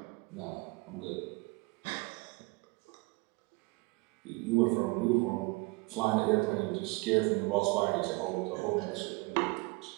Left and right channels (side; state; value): left; quieter; 26.1 dB